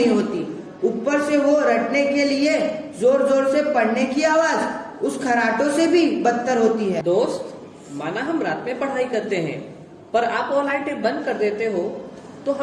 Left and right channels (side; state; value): both; identical; correlation 1.00